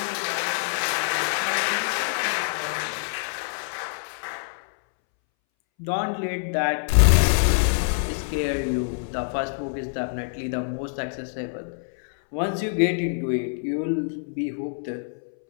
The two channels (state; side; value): silent; right; 61 dB below the other